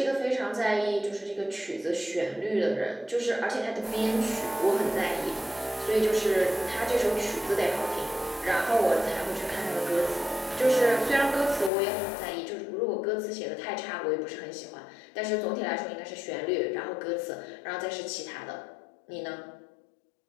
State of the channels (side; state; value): right; drops out; at 11.7 s